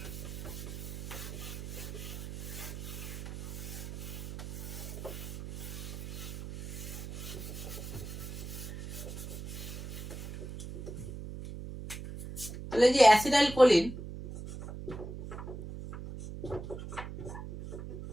তাহলে যে অ্যাসিটাইল কোলিন,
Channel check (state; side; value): noise; right; hum, 8 dB below the sound